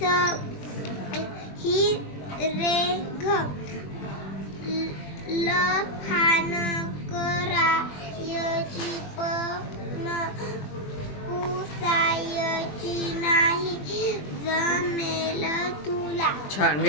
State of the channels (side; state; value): right; late; 20 ms